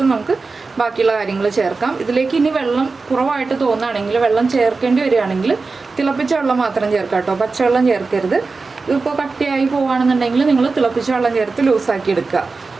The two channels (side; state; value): left; quieter; 4.1 dB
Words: നമുക്ക് ബാക്കിയുള്ള കാര്യങ്ങൾ ചേർക്കാം. ഇതിലേക്ക് ഇനി വെള്ളം കുറവായിട്ട് തോന്നുകയാണെങ്കിൽ, വെള്ളം ചേർക്കേണ്ടി വരികയാണെങ്കിൽ തിളപ്പിച്ച വെള്ളം മാത്രം ചേർക്കാം കേട്ടോ. പച്ചവെള്ളം ചേർക്കരുത്. ഇതിപ്പോൾ കട്ടിയായി പോവുകയാണെന്നുണ്ടെങ്കിൽ നിങ്ങൾ തിളപ്പിച്ച വെള്ളം ചേർത്ത് ലൂസാക്കി എടുക്കുക.